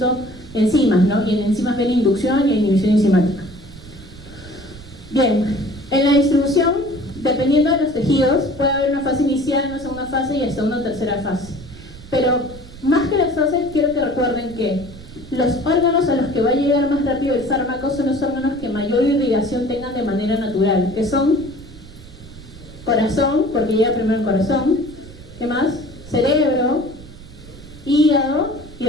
enzimas, ¿no? Y en enzimas ven inducción y inhibición enzimática. Bien, en la distribución, dependiendo de los tejidos, puede haber una fase inicial, una segunda fase y hasta una tercera fase. Pero más que las fases, quiero que recuerden que los órganos a los que va a llegar más rápido el fármaco son los órganos que mayor irrigación tengan de manera natural, que son corazón, porque llega primero el corazón, ¿qué más? Cerebro, hígado y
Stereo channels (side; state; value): right; noise; rumble, 18 dB below the sound